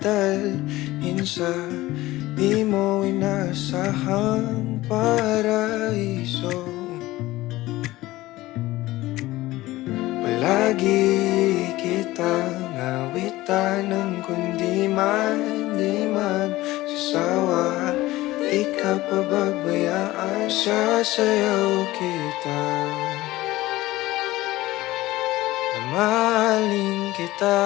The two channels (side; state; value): right; quieter; 17.8 dB